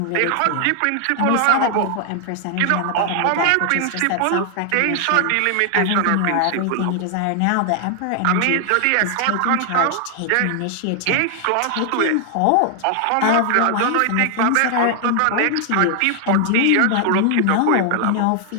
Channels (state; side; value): different; both; correlation 0.00